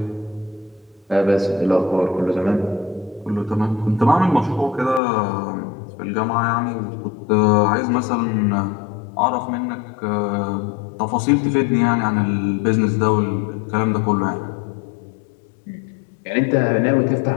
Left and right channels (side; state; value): right; drops out; at 5.0 s